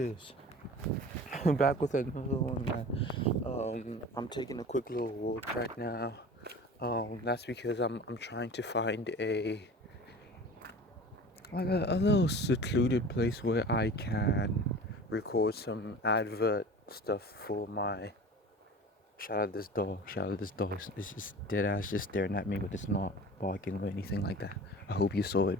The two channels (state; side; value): normal; both; correlation 0.38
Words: I'm back with another one, man. I'm taking a quick little walk right now. That's because I'm trying to find a little secluded place where I can record some advert stuff for my. Shout out this dog. It's just dead ass just staring at me, but it's not barking or anything like that. I hope you saw it